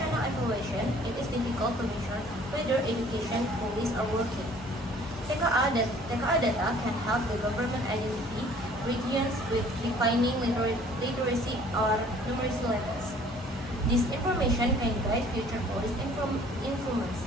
evaluation, it is difficult to measure whether education policies are working. TKA data can help the government identify regions with declining literacy or numeracy levels. This information can guide future policy influence.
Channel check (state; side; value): normal; both; correlation 0.54